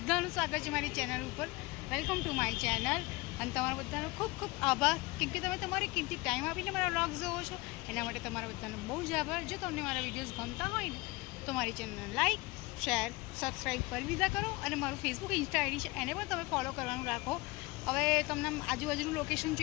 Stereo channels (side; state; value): right; quieter; 23.0 dB